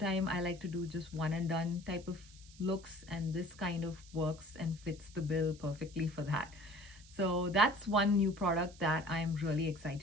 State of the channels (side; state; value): right; noise; hiss, 22 dB below the sound